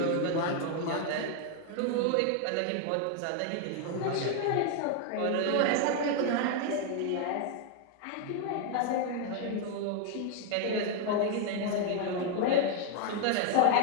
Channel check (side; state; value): both; different; correlation 0.00